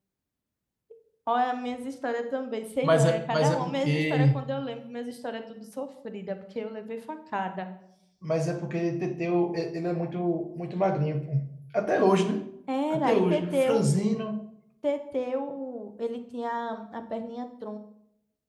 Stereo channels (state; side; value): identical; both; correlation 1.00